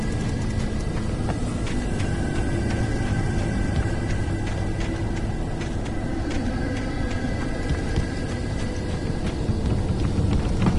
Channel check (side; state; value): both; identical; correlation 1.00